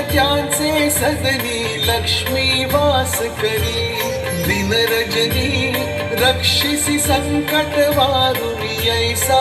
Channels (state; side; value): identical; both; correlation 1.00